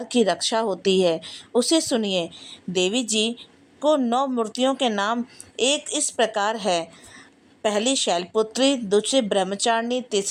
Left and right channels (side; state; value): both; identical; correlation 1.00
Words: की रक्षा होती है। उसे सुनिए। देवी जी को 9 मूर्तियों के नाम एक इस प्रकार है। पहली शैलपुत्री, दूसरी ब्रह्मचारिणी,